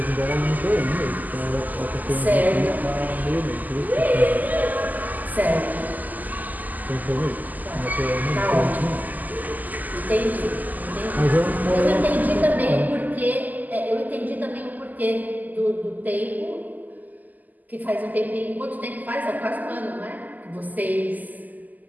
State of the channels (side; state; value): left; late; 0.082 ms